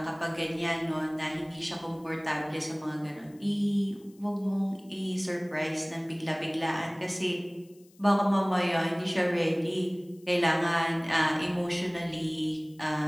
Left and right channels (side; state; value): left; noise; hiss, 29 dB below the sound